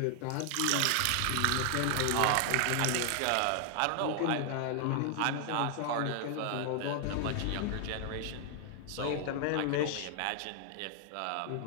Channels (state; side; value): different; both; correlation 0.00